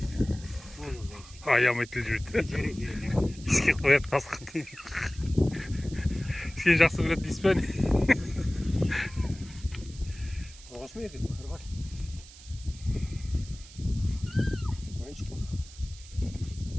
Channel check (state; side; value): noise; right; hiss, 19 dB below the sound